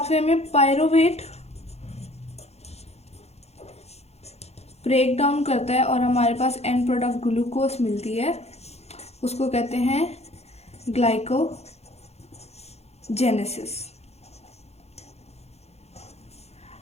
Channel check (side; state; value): right; late; 0.31 ms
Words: में पायरूवेट ब्रेक डाउन करता है और हमारे पास एंड प्रोडक्ट ग्लूकोज मिलती है, उसको कहते हैं ग्लाइकोजेनेसिस।